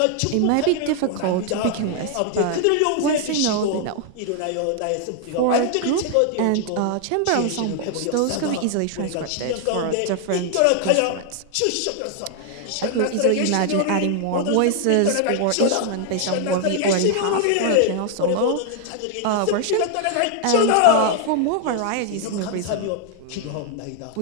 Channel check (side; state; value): both; different; correlation 0.00